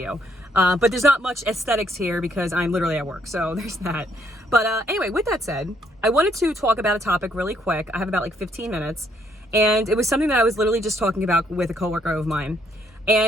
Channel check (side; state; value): both; normal; correlation 0.70